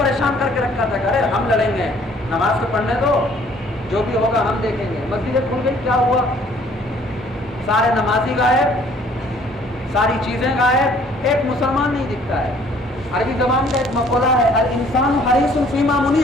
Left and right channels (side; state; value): both; normal; correlation 0.58